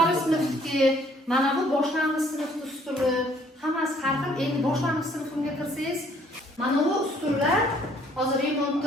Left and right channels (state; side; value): normal; both; correlation 0.61